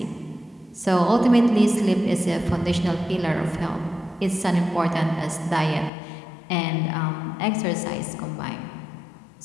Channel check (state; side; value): drops out; right; at 5.9 s